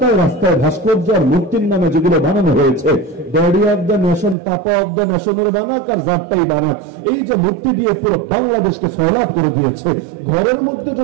রাস্তায় ভাস্কর্য আর মূর্তির নামে যেগুলো বানানো হয়েছে, daddy of the nation, papa of the নেশনের বানাক আর জাতটাই বানাক, এই যে মূর্তি দিয়ে পুরো বাংলাদেশকে ফয়লাভ করে দিয়েছে। ঘরের মধ্যে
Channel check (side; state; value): left; drops out; at 4.4 s